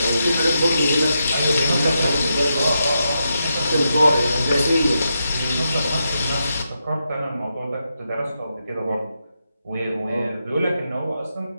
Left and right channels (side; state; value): both; inverted; correlation -0.84